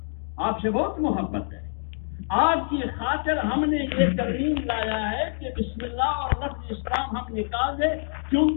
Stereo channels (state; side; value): silent; right; 61 dB below the other